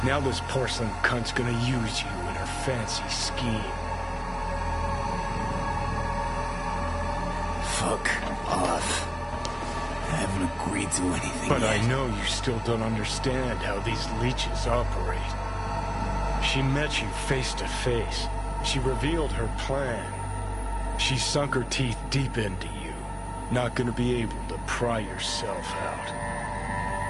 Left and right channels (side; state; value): both; identical; correlation 1.00